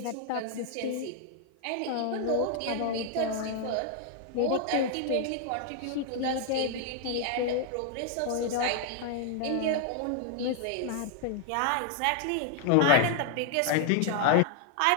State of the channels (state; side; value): different; both; correlation 0.00